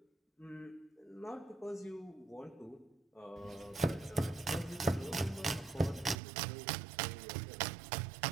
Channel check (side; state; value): left; drops out; at 6.2 s